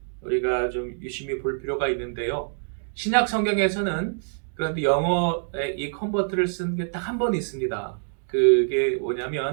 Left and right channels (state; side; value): silent; left; digital silence